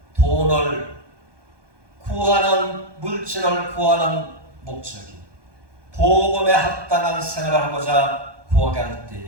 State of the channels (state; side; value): late; left; 1.2 ms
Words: 돈을 구하는 물질을 구하는 목적이 복음에 합당한 생활을 하고자 구하게 할